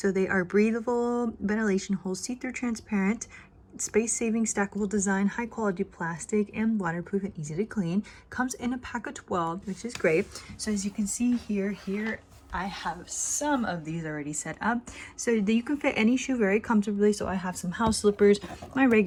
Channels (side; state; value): both; identical; correlation 1.00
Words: they are breathable, ventilation holes, see-through transparent, space-saving stackable design, high quality plastic, and waterproof and easy to clean. Comes in a pack of 12, which is great. So as you can see here I have some of these already set up so that you can fit any shoe very comfortably. So I have some house slippers, my